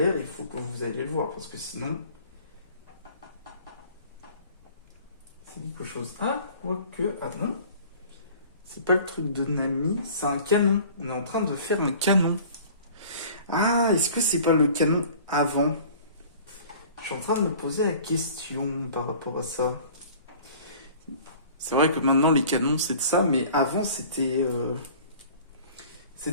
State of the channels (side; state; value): both; inverted; correlation -0.47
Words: il faut que vous alliez le voir, parce que sinon, c'est quelque chose. Ah, quoique. Ah non, c'est pas le truc de Nami, c'est un canon. On est en train de faire un canon. Ah, est-ce que c'est pas le canon avant? Je suis en train de me poser la question par rapport à ça. C'est vrai que maintenant les canons c'est de ça, mais avant c'était